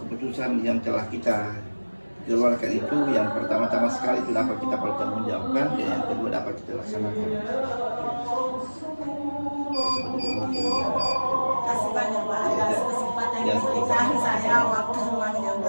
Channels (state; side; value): inverted; both; correlation -1.00